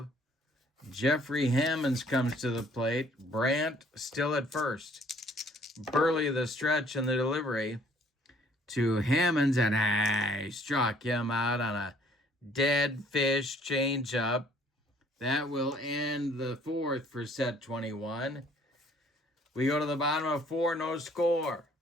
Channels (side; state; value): both; normal; correlation 0.60